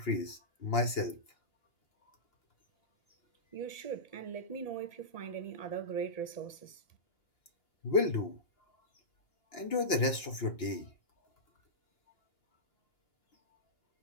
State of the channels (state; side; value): late; right; 2.9 ms